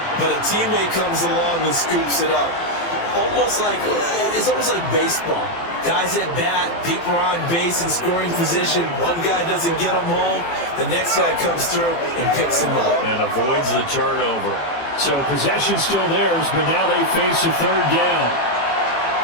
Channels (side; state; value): right; late; 18 ms